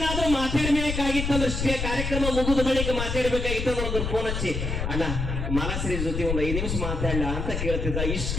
ಮಾತಾಡ್ಬೇಕಾಗಿತ್ತಂದ್ರೆ ಕಾರ್ಯಕ್ರಮ ಮುಗಿದ ಬಳಿಕ ಮಾತಾಡ್ಬೇಕಾಗಿತ್ತು ಅಂದ್ರೆ ಒಂದು ಫೋನ್ ಹಚ್ಚಿ, ಅಣ್ಣ ಮಾಲಾಶ್ರೀ ಜೊತೆ ಒಂದು 5 ನಿಮಿಷ ಮಾತಾಡಲ್ಲ ಅಂತ ಕೇಳ್ತಿದ್ದ.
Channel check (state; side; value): noise; left; rumble, 3 dB below the sound